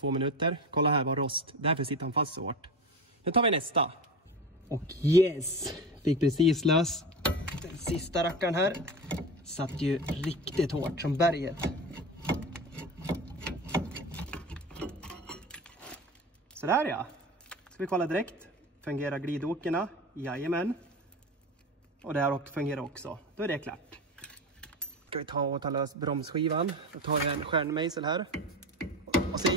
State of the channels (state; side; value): normal; both; correlation 0.27